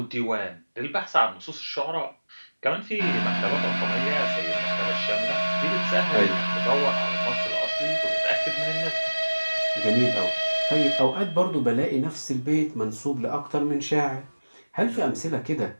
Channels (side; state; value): both; inverted; correlation -1.00